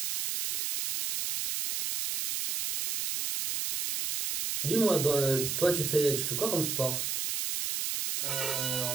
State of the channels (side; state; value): right; noise; hiss, 2 dB below the sound